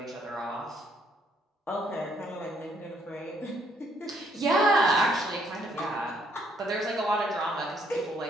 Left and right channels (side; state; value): both; normal; correlation 0.69